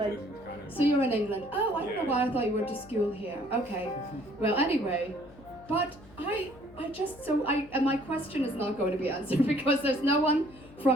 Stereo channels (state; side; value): noise; left; hum, 22 dB below the sound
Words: Midland kind of. So you're in England. Oh, I don't know Yeah. why I thought you went to school here. Okay. Well, anyway, but I just and my question is not going to be answered because there's no one